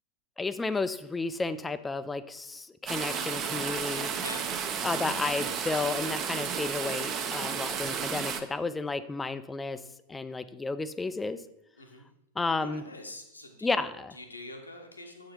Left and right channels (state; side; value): normal; both; correlation 0.67